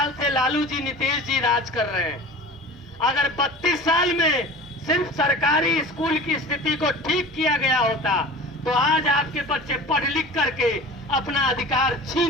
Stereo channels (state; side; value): normal; both; correlation 0.38